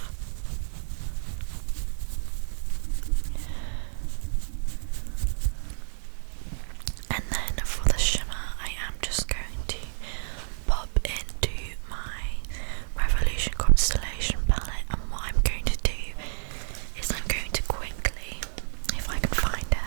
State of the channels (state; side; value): silent; left; digital silence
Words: And then for the shimmer, I am just going to pop into my Revolution Constellation palette, and what I'm going to do is I'm going to quickly, if I can find